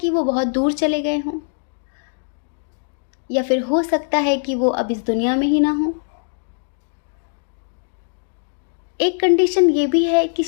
वो बहुत दूर चले गए हों, या फिर हो सकता है कि वो अब इस दुनिया में ही ना हो। एक कंडीशन ये भी है कि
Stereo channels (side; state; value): right; silent; digital silence